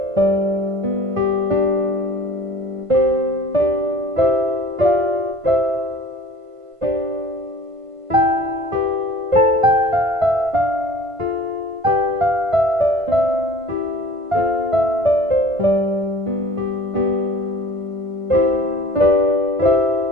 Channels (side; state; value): left; late; 1.5 ms